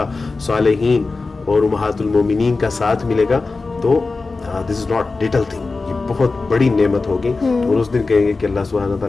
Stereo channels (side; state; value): right; quieter; 3.8 dB